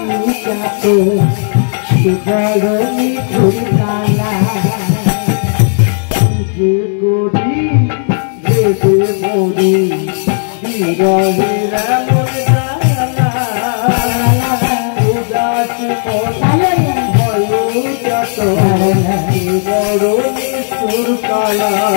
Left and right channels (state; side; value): silent; right; 59 dB below the other